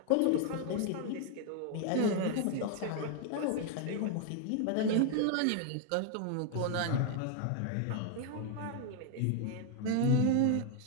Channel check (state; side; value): different; both; correlation 0.00